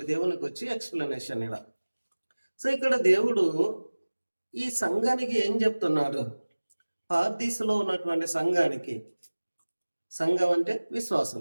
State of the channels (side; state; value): both; inverted; correlation -1.00